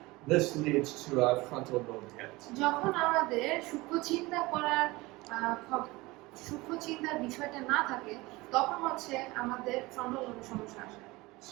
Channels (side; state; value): left; quieter; 21.8 dB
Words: This leads to a frontal lobe hit. যখন আমাদের সূক্ষ্ম চিন্তার বিষয়টা না থাকে, তখন হচ্ছে আমাদের ফ্রন্টাল লোবের সমস্যা আসে।